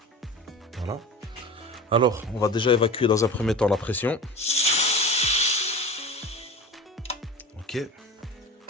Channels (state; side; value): normal; both; correlation 0.33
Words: Voilà. Alors, on va déjà évacuer dans un premier temps la pression. Ok.